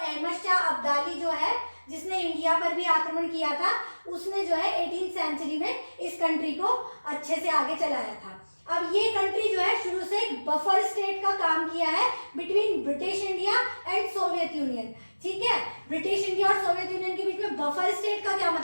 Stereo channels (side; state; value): both; inverted; correlation -1.00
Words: शाह अब्दाली जो है, जिसने इंडिया पर भी आक्रमण किया था, उसने जो है 18th सेंचुरी में इस कंट्री को अच्छे से आगे चलाया था। अब ये कंट्री जो है शुरू से एक बफर स्टेट का काम किया है between British India and Soviet union. ठीक है, ब्रिटिश इंडिया और सोवियत यूनियन के बीच में बफर स्टेट का क्या